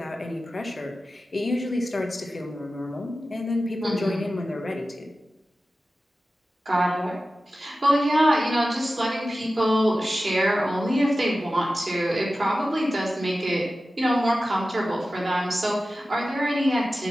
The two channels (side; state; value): both; normal; correlation 0.94